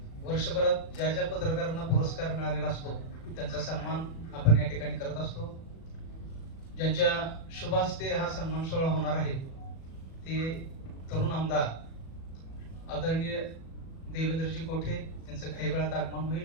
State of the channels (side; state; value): right; late; 37 ms